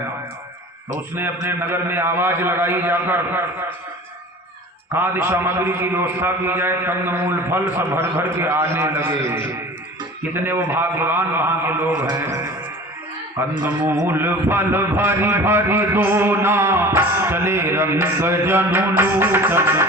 तो उसने अपने नगर में आवाज लगाई जाकर खाद्य सामग्री की व्यवस्था की जाए, कंदमूल फल सब भर भर के आने लगे। कितने वो भाग्यवान वहां के लोग हैं। कंदमूल फल भरी भरी दोना, चले रंग जनु लूटन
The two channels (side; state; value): both; normal; correlation 0.40